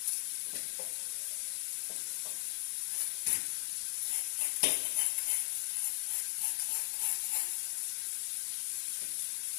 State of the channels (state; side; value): silent; right; 52 dB below the other